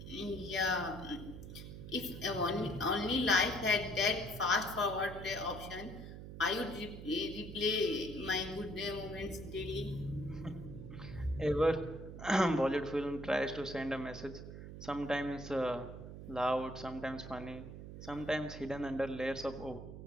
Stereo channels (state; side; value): noise; right; hum, 11 dB below the sound